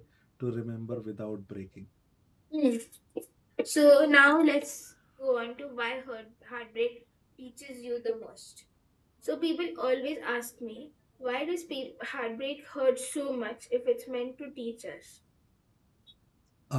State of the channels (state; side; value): identical; both; correlation 1.00